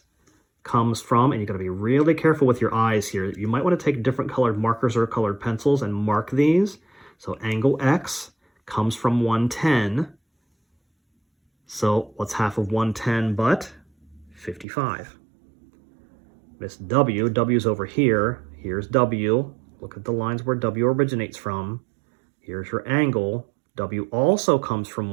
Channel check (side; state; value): left; drops out; at 14.7 s